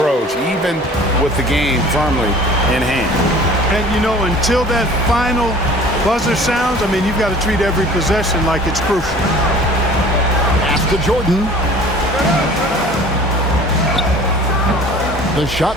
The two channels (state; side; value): normal; both; correlation 0.47